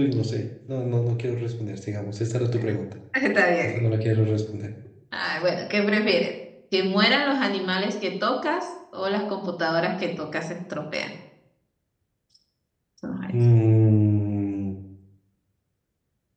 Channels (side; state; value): both; identical; correlation 1.00